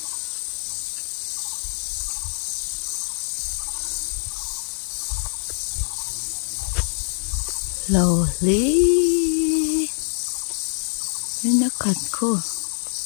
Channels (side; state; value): right; silent; 59 dB below the other